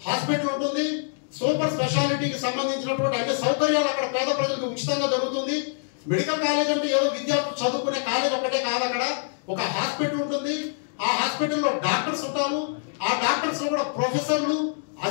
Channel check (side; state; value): right; silent; digital silence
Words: హాస్పిటల్ ఉంటుంది, సూపర్ స్పెషాలిటీకి సంబంధించినటువంటి అన్ని సౌకర్యాలు అక్కడ పేద ప్రజలకు ఉచితంగా జరుగుతుంది. మెడికల్ కాలేజ్ అంటే ఏదో విద్యార్థులు చదువుకునే కాలేజ్ ఒకటే కాదు. అక్కడ ఒక హాస్పిటల్ ఉంటుంది. ఆ హాస్పిటల్లో డాక్టర్స్ ఉంటారు. ఆ డాక్టర్స్ లో కూడా ప్రొఫెసర్లు,